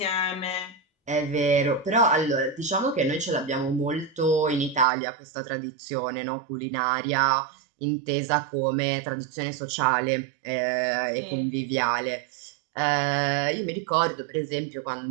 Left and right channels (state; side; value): drops out; left; at 4.9 s